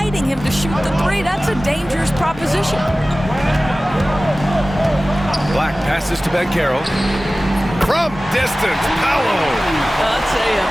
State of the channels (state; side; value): normal; both; correlation 0.97